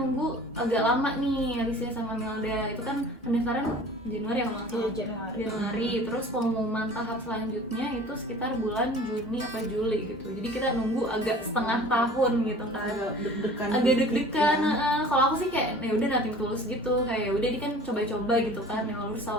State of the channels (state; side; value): normal; both; correlation 0.45